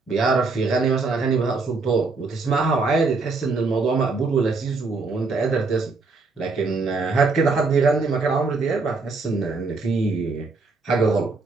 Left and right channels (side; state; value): left; quieter; 4.0 dB